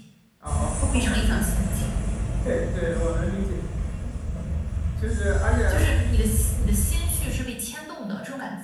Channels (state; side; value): identical; both; correlation 1.00